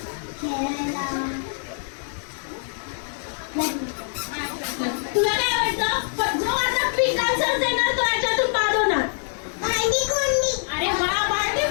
खेळायला तुला काय आवडतं? पण जो आता क्विक आन्सर देणार तो याच्यातून बाद होणार. भांडी कोंडी. अरे वा, भांडी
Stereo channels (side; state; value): right; silent; 62 dB below the other